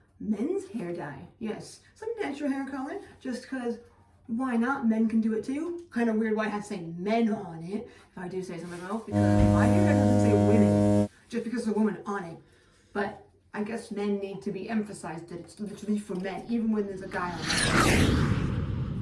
men's hair dye. Yes, some natural hair color, just because why not? Men can do it too. Kind of weird why I have to say men on it, if I do say so myself, because my hair dye doesn't say women, just because there's a woman on it. But I guess men need to be emphasized that it's literally for men, even when there's a guy on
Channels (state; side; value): identical; both; correlation 1.00